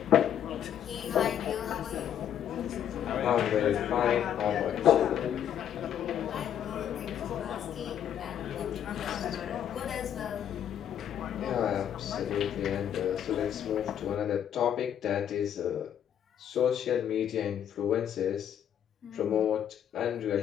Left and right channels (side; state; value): right; quieter; 9.7 dB